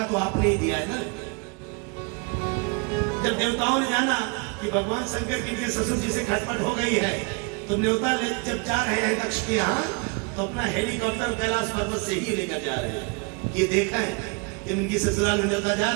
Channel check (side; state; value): left; quieter; 31.8 dB